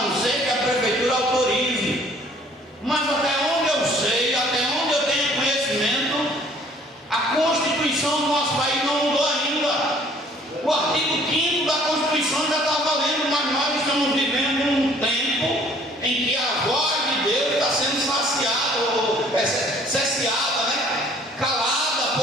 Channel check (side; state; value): both; normal; correlation 0.57